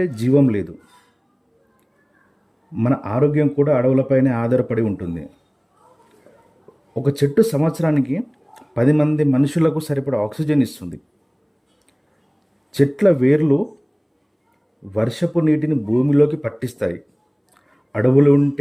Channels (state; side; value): identical; both; correlation 1.00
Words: జీవం లేదు. మన ఆరోగ్యం కూడా అడవులపైనే ఆధారపడి ఉంటుంది. ఒక చెట్టు సంవత్సరానికి 10 మంది మనుషులకు సరిపడా ఆక్సిజన్ ఇస్తుంది. చెట్ల వేర్లు వర్షపు నీటిని భూమిలోకి పట్టిస్తాయి. అడవులు